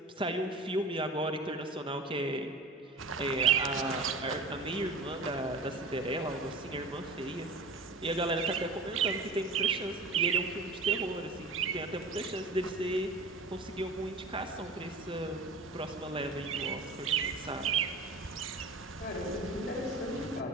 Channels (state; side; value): quieter; left; 3.2 dB